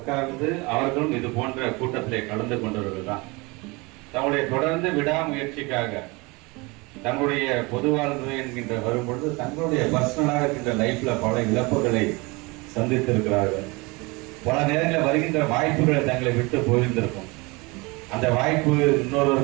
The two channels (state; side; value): quieter; left; 25.9 dB